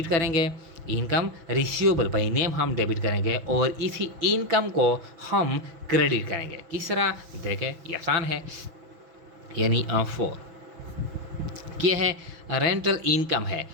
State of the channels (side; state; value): left; late; 6.1 ms